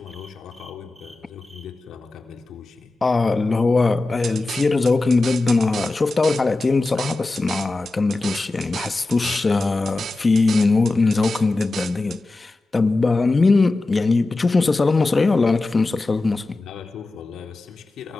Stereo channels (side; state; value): right; quieter; 3.2 dB